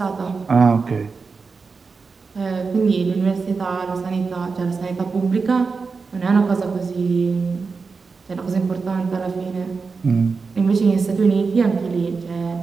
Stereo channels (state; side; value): quieter; left; 4.7 dB